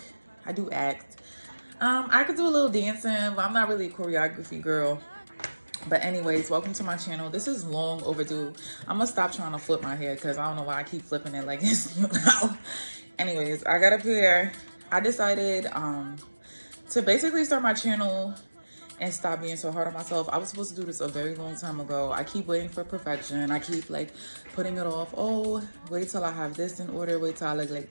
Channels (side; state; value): both; inverted; correlation -1.00